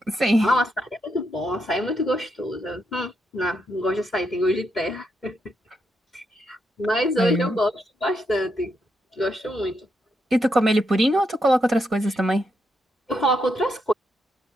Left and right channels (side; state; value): both; normal; correlation 0.81